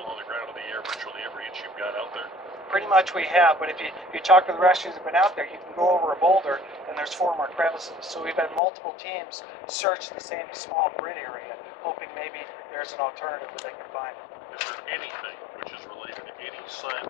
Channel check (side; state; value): right; drops out; at 8.6 s